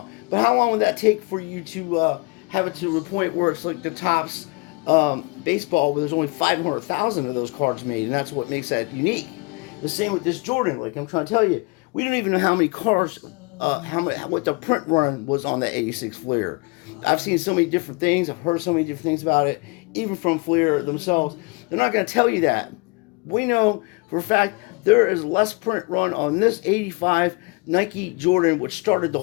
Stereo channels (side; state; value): right; quieter; 28.2 dB